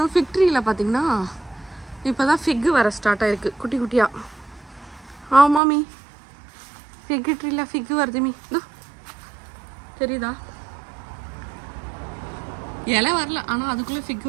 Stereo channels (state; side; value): drops out; left; at 5.6 s